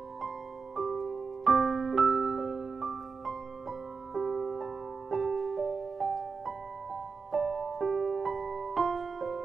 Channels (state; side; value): quieter; left; 4.9 dB